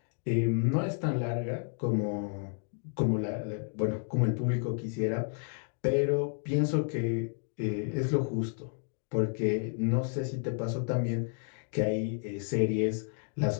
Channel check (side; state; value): right; silent; 57 dB below the other